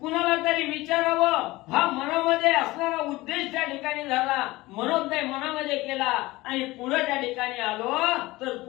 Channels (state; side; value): quieter; right; 19.8 dB